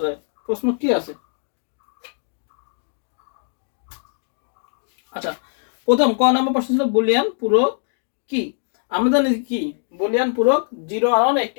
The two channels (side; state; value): right; silent; 64 dB below the other